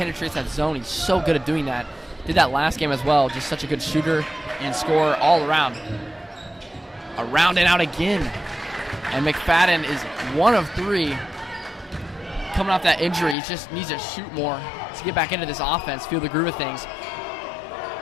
that zone. He's so good at doing that. Did that last game as well. Just such a good shooter and scorer all around. Around and out again. And McFadden is 1 of 3 coming off that injury. He just needs to shoot more to get back into this offense, feel the groove of things.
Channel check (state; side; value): drops out; right; at 13.4 s